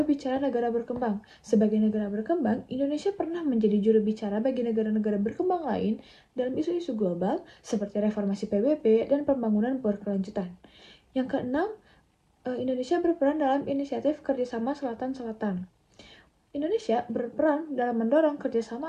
bicara negara berkembang. Sebagai negara berkembang, Indonesia pernah menjadi juru bicara bagi negara-negara berkembang lain dalam isu-isu global seperti reformasi PBB dan pembangunan berkelanjutan. Yang keenam, Indonesia berperan dalam inisiatif kerjasama Selatan-Selatan. Indonesia berperan dalam mendorong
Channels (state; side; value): identical; both; correlation 1.00